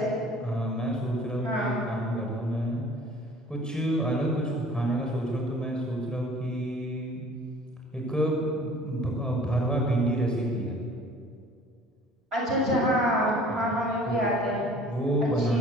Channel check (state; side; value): normal; both; correlation 0.50